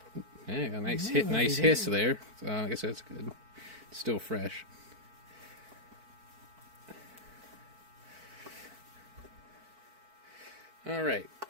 Yeah, a nice hiss there. So I guess that's good. It's still fresh. Alright,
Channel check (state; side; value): late; left; 4.5 ms